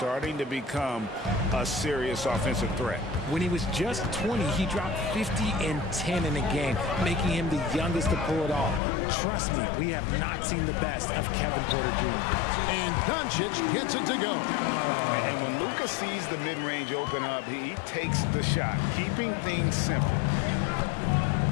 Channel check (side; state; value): right; drops out; at 8.8 s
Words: to become a serious offensive threat. When he was just 20, he dropped 50 and 10 in a game, making him the youngest to pull it off. Trust me, we have not seen the best of Kevin Porter Jr. And Doncic gets it to go. And when Luka sees the mid-range open up, he takes the shot, keeping things simple.